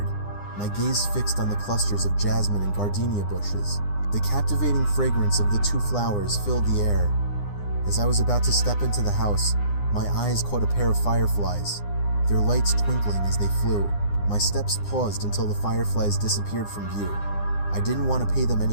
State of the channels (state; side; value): late; right; 9.8 ms